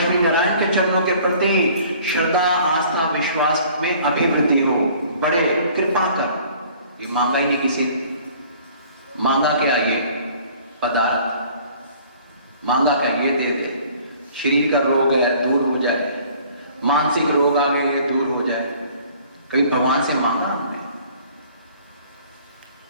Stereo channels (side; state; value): both; inverted; correlation -0.53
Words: नारायण के चरणों के प्रति श्रद्धा आस्था विश्वास में अभिवृद्धि हो, बढ़े, कृपा कर। ये मांगा ही नहीं किसी। मांगा क्या? ये पदार्थ मांगा क्या? ये दे दे। शरीर का रोग है दूर हो जाए, मानसिक रोग आ गए ये दूर हो जाए। कभी भगवान से मांगा हमने?